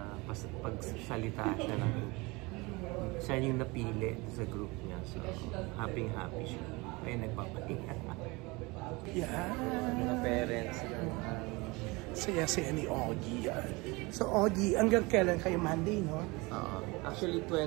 pagsalita siya ng siya yung napili sa group niya. So, happy siya. Ay, nagpapahinga. Yeah. Mga parents. Saya-saya ni Augie. So, Augie, hanggang kailan kayo? Monday, no? Actually,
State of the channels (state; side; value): quieter; left; 24.8 dB